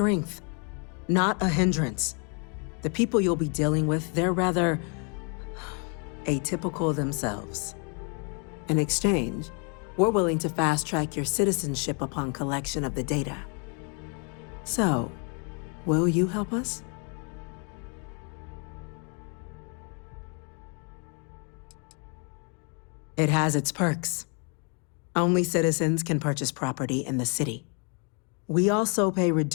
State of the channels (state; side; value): quieter; right; 37.6 dB